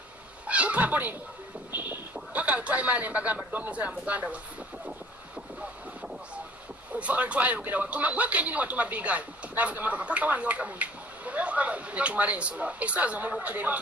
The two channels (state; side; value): normal; both; correlation 0.52